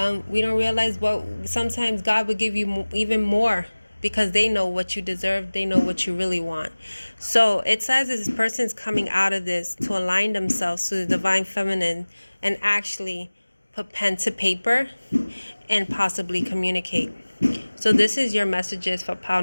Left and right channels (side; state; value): both; inverted; correlation -1.00